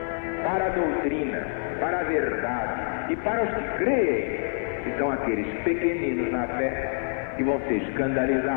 para a doutrina, para a verdade e para os que creem, que são aqueles pequeninos na fé, que vão ser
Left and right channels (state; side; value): silent; right; 57 dB below the other